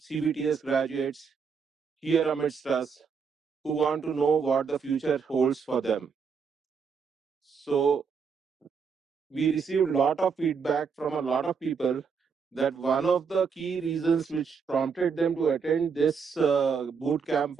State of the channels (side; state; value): left; quieter; 5.9 dB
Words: graduates here amidst us who want to know what the future holds for them. So we received a lot of feedback from a lot of people that one of the key reasons which prompted them to attend this boot camp